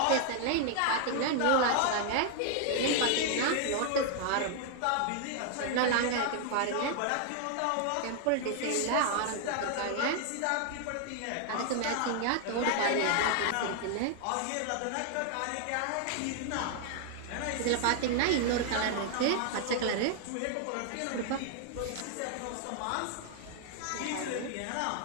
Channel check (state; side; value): different; both; correlation 0.00